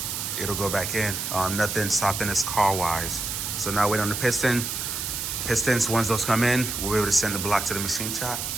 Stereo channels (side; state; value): right; noise; hiss, 3 dB below the sound